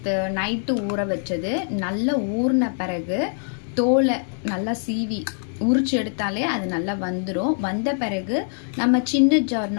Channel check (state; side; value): silent; right; digital silence